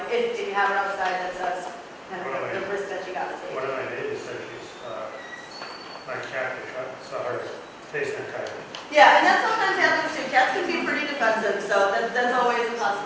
If you have her outside, that's kind of the risk that you got to take. One of my neighbors said my cat saw her facing a coyote. Yeah, and that sometimes happens too. Cats can be pretty defensive, so that's always a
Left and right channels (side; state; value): both; identical; correlation 1.00